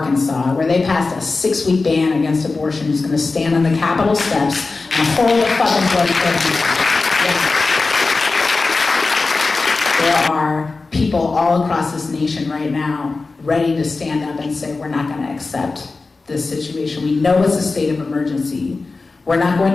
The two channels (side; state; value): right; quieter; 3.8 dB